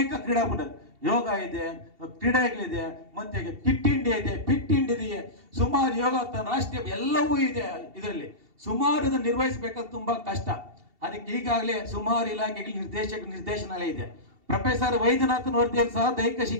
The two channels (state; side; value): late; left; 2.7 ms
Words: ಕ್ರೀಡಾಕೂಟ ಯೋಗ ಇದೆ, ಕ್ರೀಡೆಗಳಿದೆ, ಮತ್ತೆ ಕಿಟ್ ಇಂಡಿಯಾ ಇದೆ, ಫಿಟ್ ಇಂಡಿಯಾ ಇದೆ, ಸುಮಾರು ಯೋಗ ರಾಷ್ಟ್ರೀಯ ಎಲ್ಲವೂ ಇದೆ. ಇದರಲ್ಲಿ ಸುಮಾರು ಇದನ್ನು ನಿರ್ವಹಿಸಬೇಕಾದ್ರೆ ತುಂಬಾ ಕಷ್ಟ. ಅದಕ್ಕೆ ಈಗಾಗಲೇ ಸುಮಾರು ಇಲಾಖೆಗಳ ನಿರ್ದೇಶನಾಲಯ ಇದೆ. ಪ್ರೊಫೆಸರ್ ವೈದ್ಯನಾಥನ್ ವರದಿಯಲ್ಲಿ ಸಹ ದೈಹಿಕ